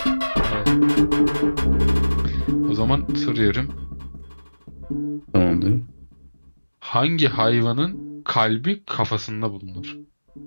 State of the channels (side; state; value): both; inverted; correlation -1.00